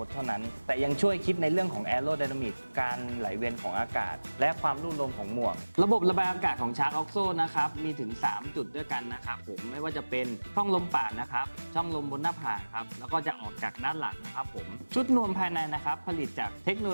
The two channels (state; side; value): inverted; both; correlation -1.00